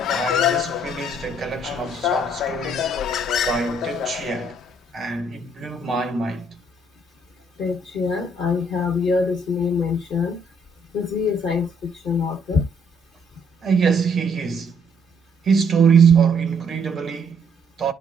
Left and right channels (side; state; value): both; normal; correlation 0.67